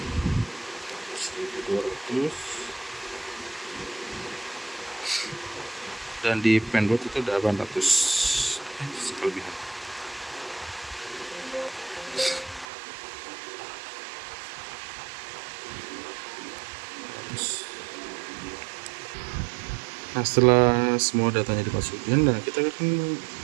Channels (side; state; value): left; drops out; at 12.7 s